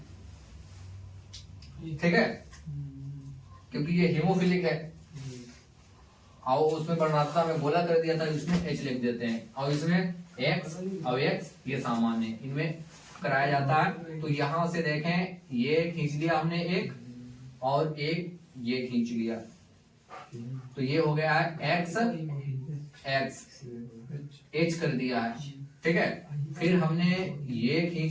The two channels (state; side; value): identical; both; correlation 1.00